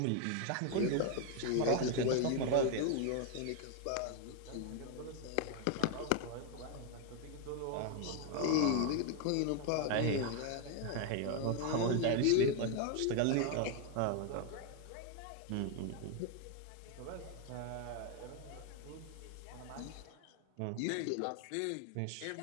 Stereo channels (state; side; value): different; both; correlation 0.01